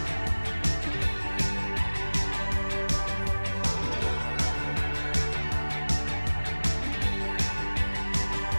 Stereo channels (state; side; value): inverted; both; correlation -1.00